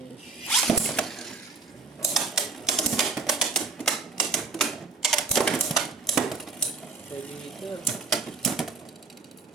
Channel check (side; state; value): left; quieter; 4.3 dB